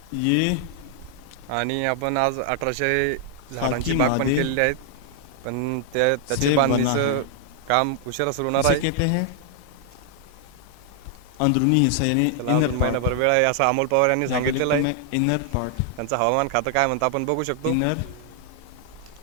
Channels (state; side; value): different; both; correlation 0.00